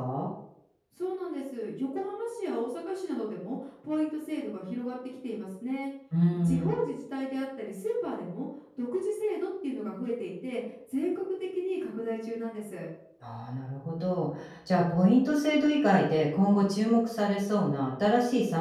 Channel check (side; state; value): both; identical; correlation 1.00